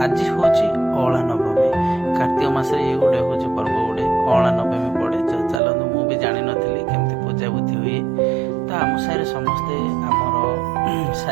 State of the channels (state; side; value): drops out; left; at 5.6 s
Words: ଆଜି ହେଉଛି ଅଁଳା ନବମୀ। କାର୍ତ୍ତିକ ମାସରେ ଇଏ ଗୋଟେ ହେଉଛି ପର୍ବ, ଗୋଟେ ଅଁଳା ନବମୀ ପଡ଼େ। ଚାଲନ୍ତୁ, ମୁଁ ବି ଜାଣିନଥିଲି କେମିତି ପୂଜାବୁଦ୍ଧି ହୁଏ। ତ ଆମ ସାହିରେ ସମସ୍ତେ ଆମର